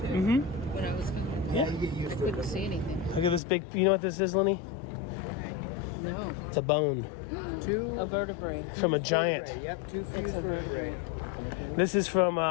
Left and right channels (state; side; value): drops out; right; at 3.4 s